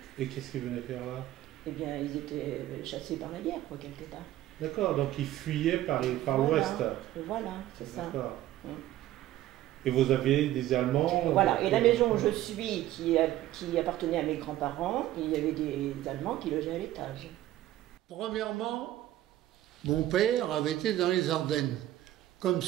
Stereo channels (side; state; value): left; quieter; 14.2 dB